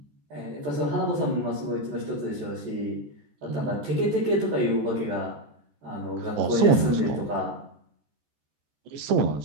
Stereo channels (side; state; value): left; late; 14 ms